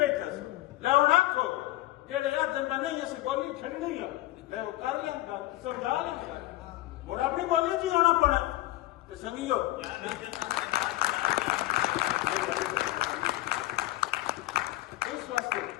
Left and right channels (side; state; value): right; quieter; 17.3 dB